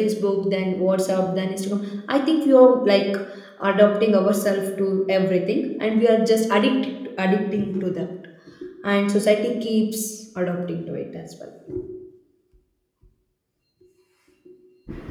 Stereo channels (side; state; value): both; identical; correlation 1.00